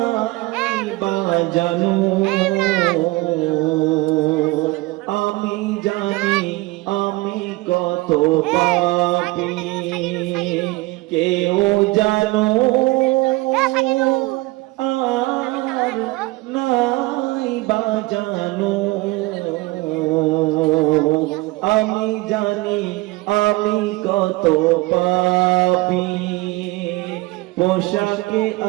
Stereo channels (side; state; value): left; quieter; 21.6 dB